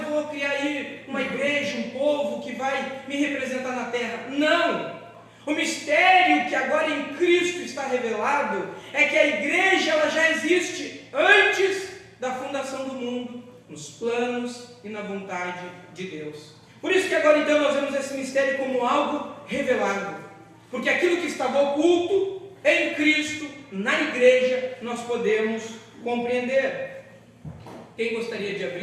vou criar aí uma igreja, um povo que vai me representar na terra. Não! O mistério que agora em Cristo está revelado é que a igreja, ela já existe antes da fundação do mundo, nos planos e na vontade de Deus. Por isso que agora então nós vemos esse mistério como algo revelado, porque aquilo que estava oculto em Cristo, na igreja, nós podemos compreender. Quem gostaria de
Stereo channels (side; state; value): both; identical; correlation 1.00